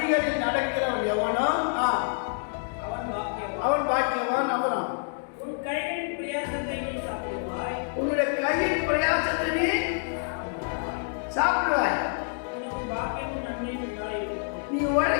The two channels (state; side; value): silent; right; digital silence